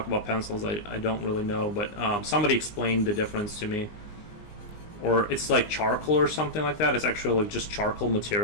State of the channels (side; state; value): right; late; 20 ms